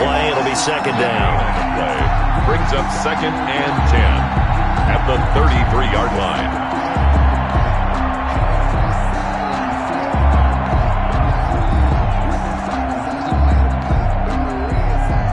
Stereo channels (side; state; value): both; identical; correlation 1.00